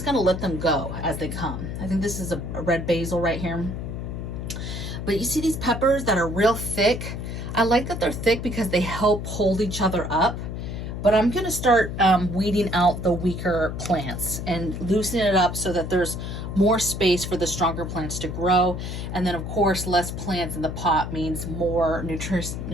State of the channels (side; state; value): left; noise; hum, 6 dB below the sound